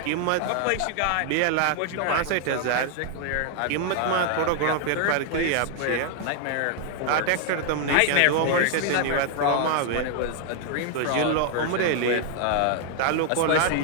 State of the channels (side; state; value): both; different; correlation 0.00